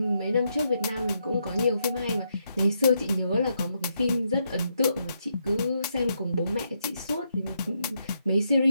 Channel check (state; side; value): inverted; both; correlation -0.80